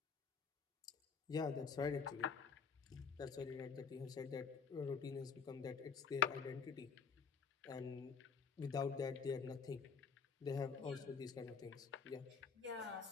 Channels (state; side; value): quieter; right; 5.9 dB